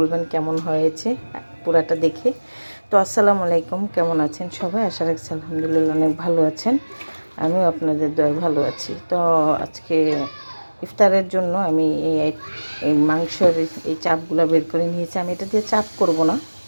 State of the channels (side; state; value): both; inverted; correlation -1.00